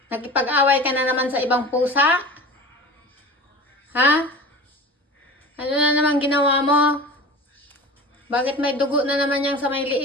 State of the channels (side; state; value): both; normal; correlation 0.36